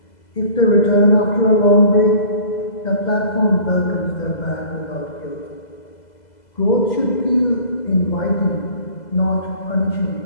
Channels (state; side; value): late; right; 2.0 ms